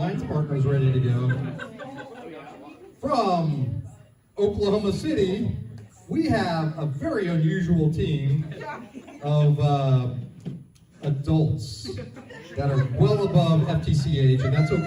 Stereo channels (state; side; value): identical; both; correlation 1.00